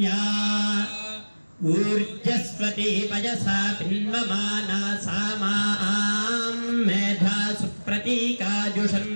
ऊर्जस्वती पयसा पिन्वमाना सा मां मेधा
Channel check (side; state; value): both; inverted; correlation -1.00